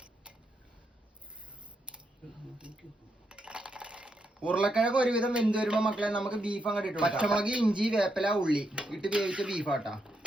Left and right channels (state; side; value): normal; both; correlation 0.81